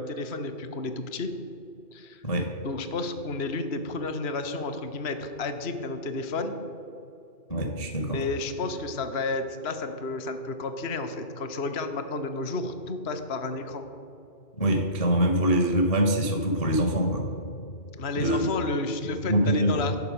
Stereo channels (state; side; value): late; right; 2.4 ms